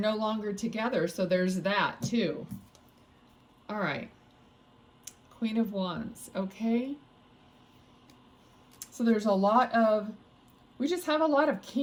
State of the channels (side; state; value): both; identical; correlation 1.00